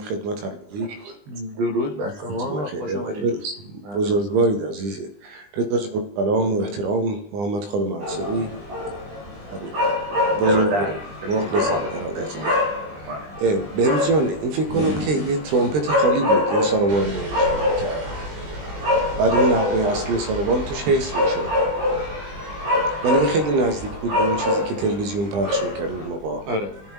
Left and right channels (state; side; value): late; left; 20 ms